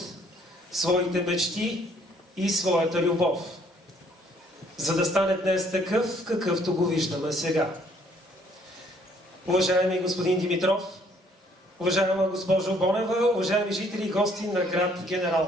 своите мечти и своята любов, за да стане днес такъв, какъвто го виждаме сега. Уважаеми господин Димитров, уважаема госпожо Бонева, уважаеми жители и гости на град Генерал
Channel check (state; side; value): normal; both; correlation 0.63